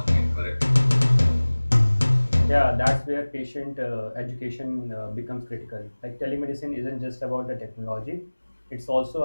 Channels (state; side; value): inverted; both; correlation -1.00